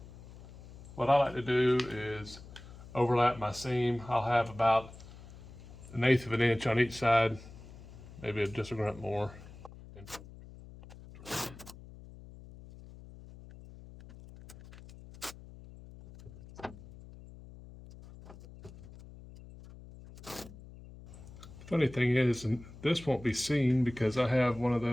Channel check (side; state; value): left; noise; hum, 17 dB below the sound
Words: what I like to do is overlap my seam. I'll have about 1/8 of an inch on each side, maybe just a grunt more. Funny thing is, and this won't be seen because I have one of